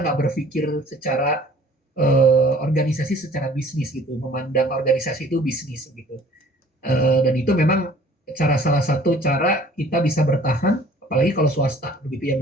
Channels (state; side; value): normal; both; correlation 0.52